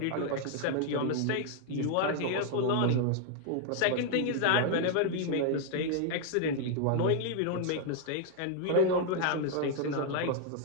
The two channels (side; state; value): both; different; correlation 0.00